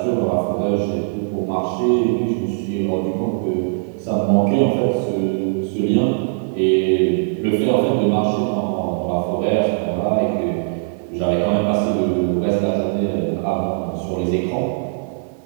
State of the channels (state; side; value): silent; left; 66 dB below the other